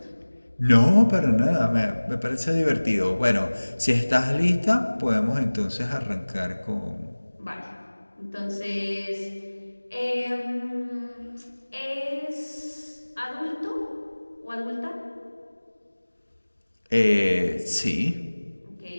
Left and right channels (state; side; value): inverted; both; correlation -1.00